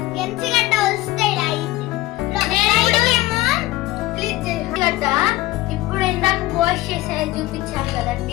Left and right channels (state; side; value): quieter; right; 18.0 dB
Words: ఇప్పుడు ఇందాక వాష్ చేసేది చూపించారు